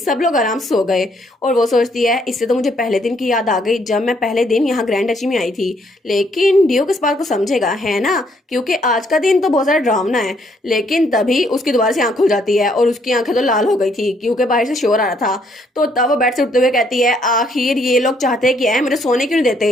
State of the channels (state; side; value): normal; both; correlation 0.69